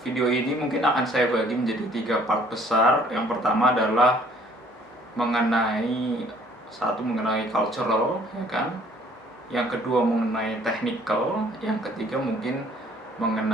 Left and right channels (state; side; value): normal; both; correlation 0.58